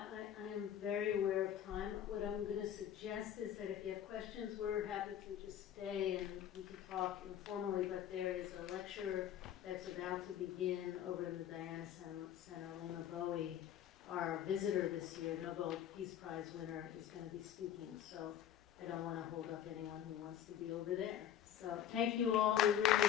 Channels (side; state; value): right; quieter; 10.3 dB